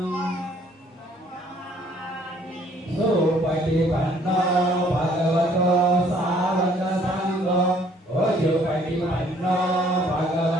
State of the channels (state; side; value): normal; both; correlation 0.60